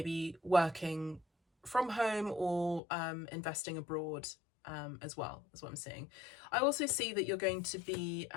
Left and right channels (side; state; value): right; drops out; at 2.8 s